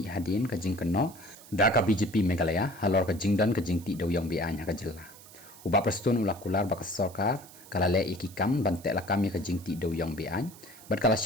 hadin ka jingkano da ka BJP Meghalaya halor ka jingdan ka jingti dewiong bi an haka jela uba prestun ulakular baka Sorkar kala le ikikam ban te lakam ya ka jingti dewiong bi an bat kala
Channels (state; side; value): noise; right; hiss, 20 dB below the sound